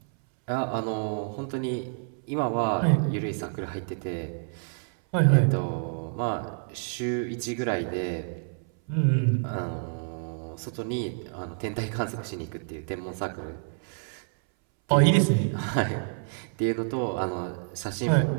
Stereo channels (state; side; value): silent; left; 59 dB below the other